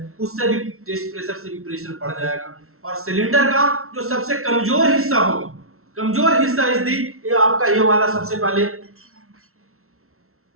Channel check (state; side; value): late; left; 0.63 ms